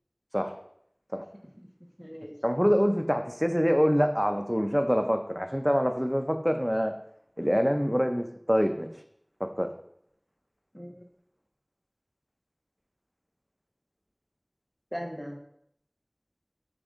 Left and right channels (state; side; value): identical; both; correlation 1.00